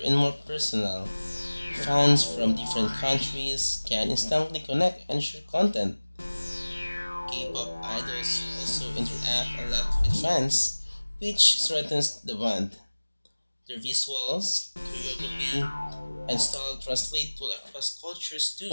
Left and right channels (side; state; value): both; inverted; correlation -1.00